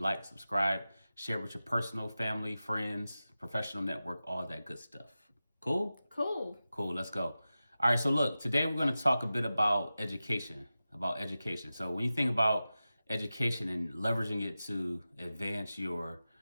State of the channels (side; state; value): both; inverted; correlation -0.94